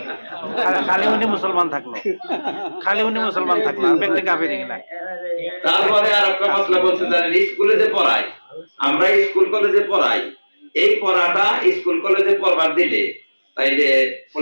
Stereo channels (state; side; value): inverted; both; correlation -1.00